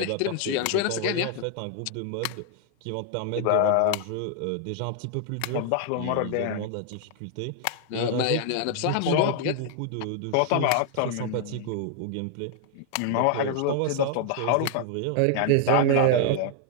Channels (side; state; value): both; different; correlation 0.00